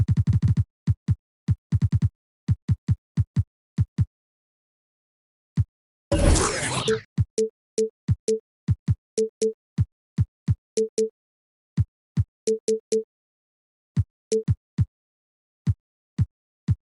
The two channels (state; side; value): identical; both; correlation 1.00